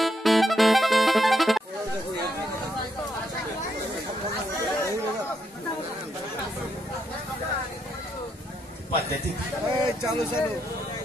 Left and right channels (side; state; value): both; normal; correlation 0.79